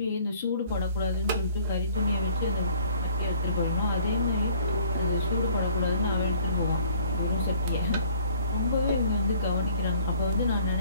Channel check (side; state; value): both; inverted; correlation -0.56